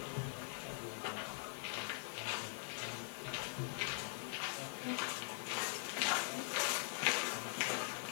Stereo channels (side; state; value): right; silent; digital silence